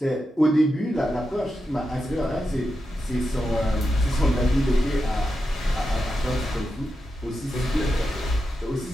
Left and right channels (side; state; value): both; normal; correlation 0.88